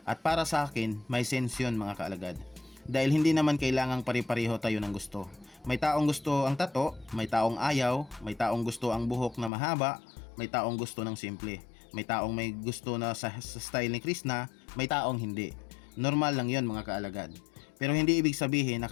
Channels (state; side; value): drops out; right; at 9.5 s